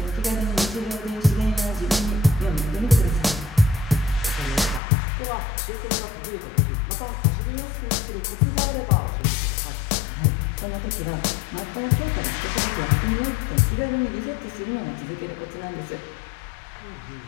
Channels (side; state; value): right; drops out; at 4.8 s